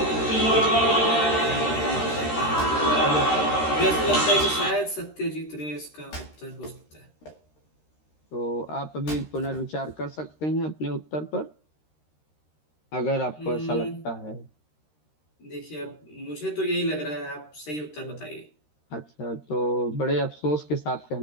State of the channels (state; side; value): late; right; 13 ms